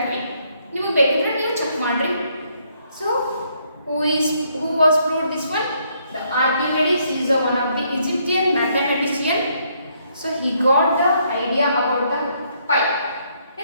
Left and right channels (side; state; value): both; inverted; correlation -0.71